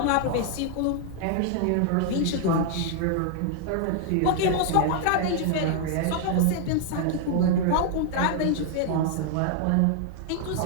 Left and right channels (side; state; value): both; different; correlation 0.00